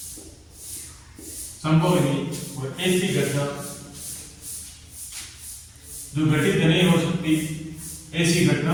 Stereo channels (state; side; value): identical; both; correlation 1.00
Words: संभव नहीं। और ऐसी घटना जो घटित नहीं हो सकती, ऐसी घटना